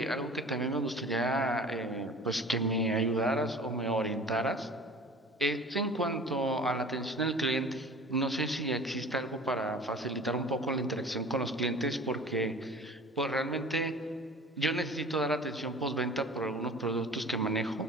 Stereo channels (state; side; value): normal; both; correlation 0.42